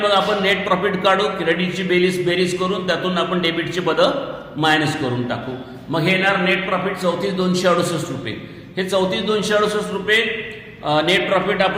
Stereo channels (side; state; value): both; identical; correlation 1.00